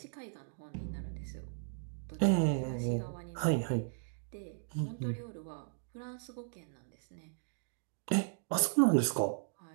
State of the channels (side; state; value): left; silent; digital silence